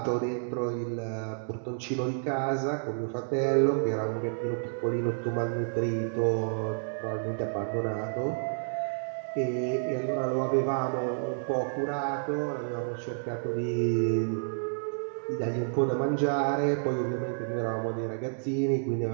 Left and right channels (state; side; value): silent; left; digital silence